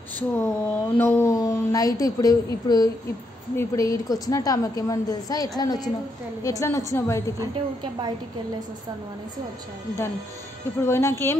సో నువ్వు నైట్ ఇప్పుడు ఈడికి వచ్చినట్టు ఆమెకి ఏమని తెలుసా, ఎట్లా వచ్చినావు బయటికి అంటే ఊరికే బయటికి వెళ్ళేసి వస్తాను అనేసి వచ్చాను. దాన్ని ఇప్పుడు పోయినాక ఏం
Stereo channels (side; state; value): both; normal; correlation 0.78